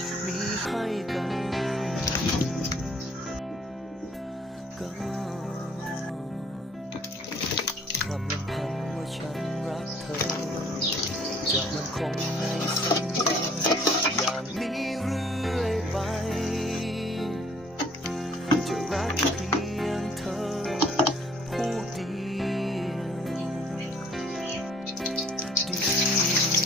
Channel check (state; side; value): normal; both; correlation 0.58